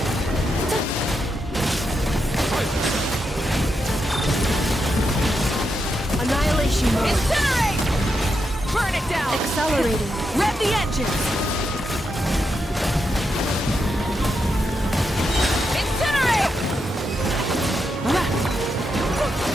Annihilation mode. Incinerate! Burn it down! Accelerating. Rev the engines! Incinerate!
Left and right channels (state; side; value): normal; both; correlation 0.84